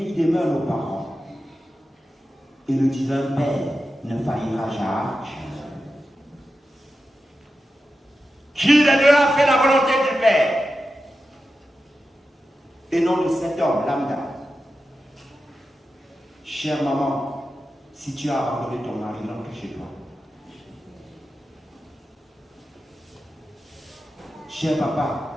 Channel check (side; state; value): both; normal; correlation 0.91